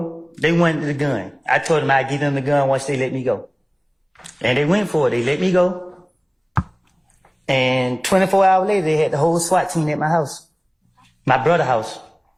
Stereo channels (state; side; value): identical; both; correlation 1.00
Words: they wanted the gun. I told them I'd give them the gun once they let me go. And they went for it. They let me go. And 24 hours later, they had the whole SWAT team at my house, my brother's house.